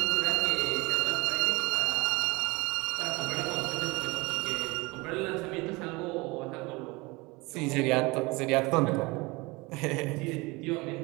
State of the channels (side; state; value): left; quieter; 24.5 dB